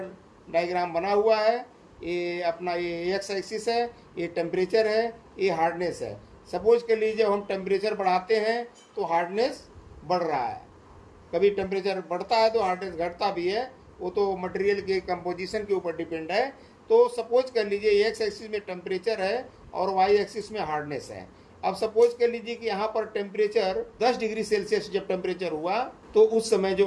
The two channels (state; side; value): identical; both; correlation 1.00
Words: डायग्राम बना हुआ है, ये अपना ये एक्स एक्सिस है, ये टेम्परेचर है, ये हार्डनेस है। सपोज कर लीजिए हम टेम्परेचर बढ़ाते हैं तो हार्डनेस बढ़ रहा है, कभी टेम्परेचर बढ़ता है तो हार्डनेस घटता भी है, वो तो मटेरियल के कंपोजिशन के ऊपर डिपेंड है। तो सपोज कर लीजिए एक्स एक्सिस में टेम्परेचर है और वाई एक्सिस में हार्डनेस है। अब सपोज कर लीजिए कि यहाँ पर टेम्परेचर 10 डिग्री सेल्सियस जब टेम्परेचर हुआ तो उस समय